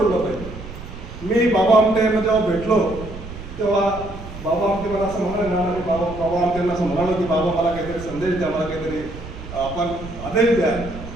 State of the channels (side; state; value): right; noise; rumble, 12 dB below the sound